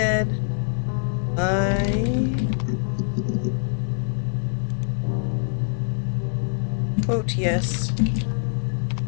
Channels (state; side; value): silent; right; digital silence